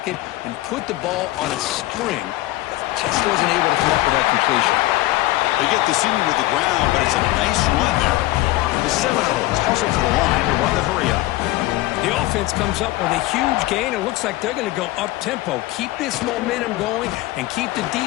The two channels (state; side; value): quieter; right; 17.8 dB